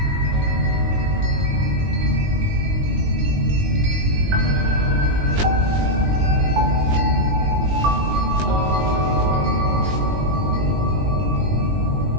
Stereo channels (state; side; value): late; left; 20 ms